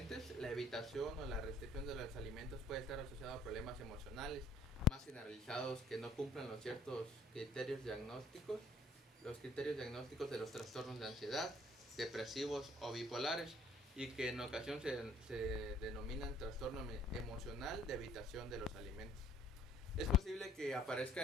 la evitación o la restricción de los alimentos puede estar asociada a problemas emocionales más generalizados que no cumplan los ciertos criterios diagnósticos, los criterios diagnósticos de los trastornos de ansiedad, depresivos o bipolares, y que en ocasión se denominan trastorno emocional de evitación de los alimentos. Es posible que aparezca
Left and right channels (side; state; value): both; normal; correlation 0.60